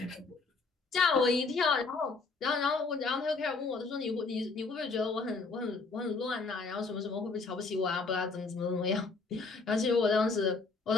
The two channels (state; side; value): quieter; right; 4.1 dB